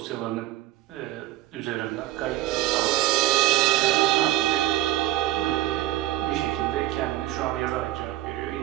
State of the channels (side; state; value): left; quieter; 15.7 dB